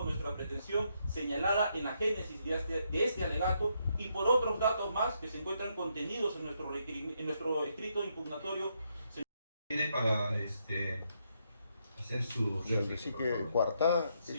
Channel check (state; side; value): inverted; both; correlation -0.77